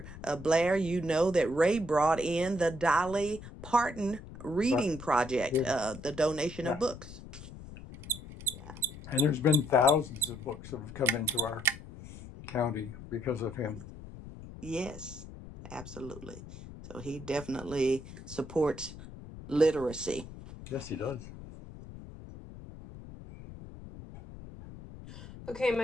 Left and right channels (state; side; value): noise; left; rumble, 14 dB below the sound